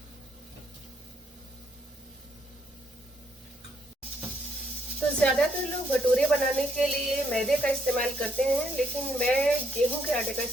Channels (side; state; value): both; normal; correlation 0.72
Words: तो ज़्यादातर लोग भटूरे बनाने के लिए मैदे का इस्तेमाल करते हैं, लेकिन मैं गेहूं के आटे का